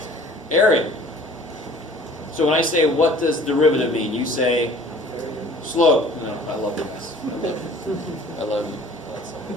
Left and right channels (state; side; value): normal; both; correlation 0.49